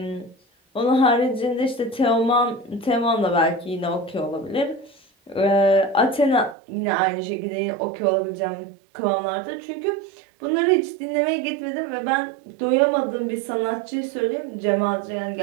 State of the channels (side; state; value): left; drops out; at 6.6 s